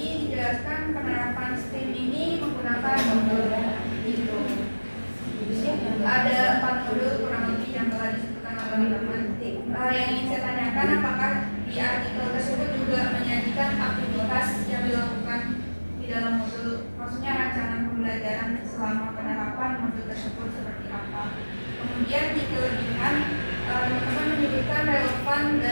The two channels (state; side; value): inverted; both; correlation -1.00